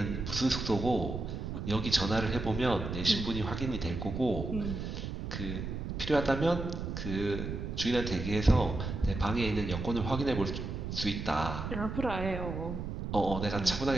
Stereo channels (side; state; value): right; noise; rumble, 5 dB below the sound